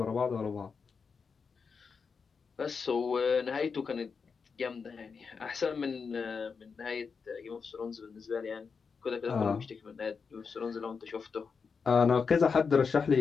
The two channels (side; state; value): right; quieter; 5.5 dB